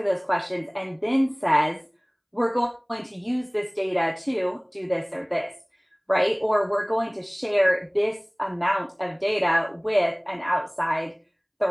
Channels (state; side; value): identical; both; correlation 1.00